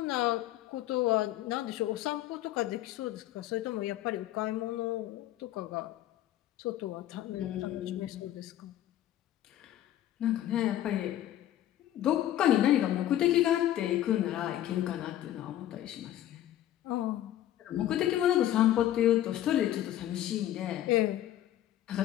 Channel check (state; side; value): quieter; right; 12.7 dB